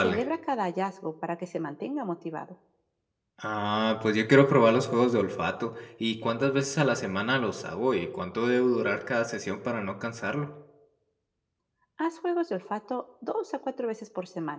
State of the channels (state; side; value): identical; both; correlation 1.00